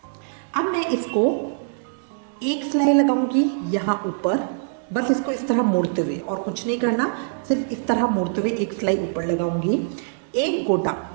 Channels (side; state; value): left; silent; digital silence